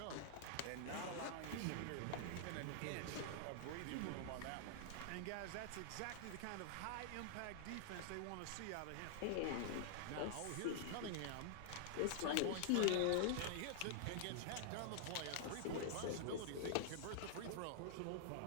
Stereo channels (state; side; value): different; both; correlation -0.01